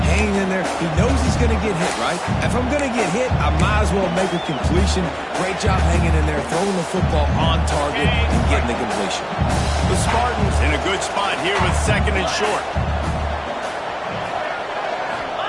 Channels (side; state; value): both; identical; correlation 1.00